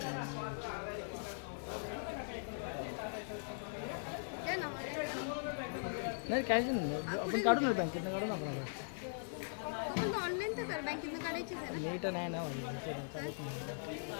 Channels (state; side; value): silent; right; digital silence